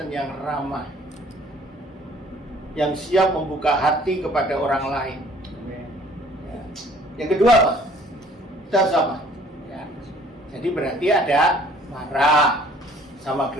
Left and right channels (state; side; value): normal; both; correlation 0.56